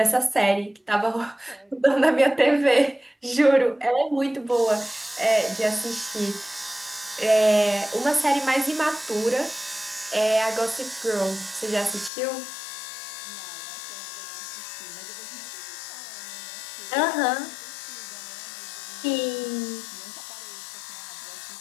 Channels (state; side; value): drops out; right; at 12.1 s